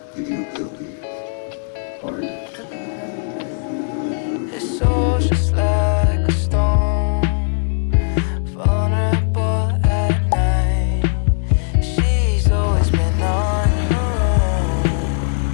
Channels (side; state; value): right; silent; digital silence